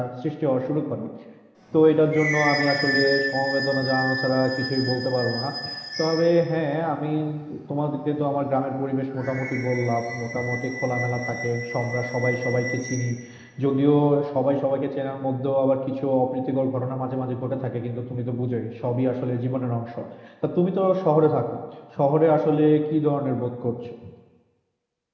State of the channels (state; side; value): identical; both; correlation 1.00